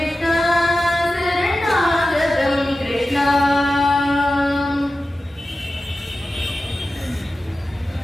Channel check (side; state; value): both; normal; correlation 0.94